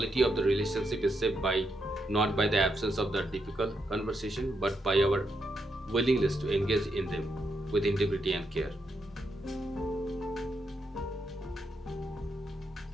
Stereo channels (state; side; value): normal; both; correlation 0.81